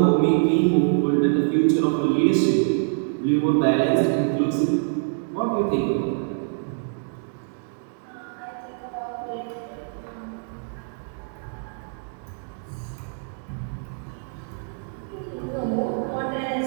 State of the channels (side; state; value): left; silent; digital silence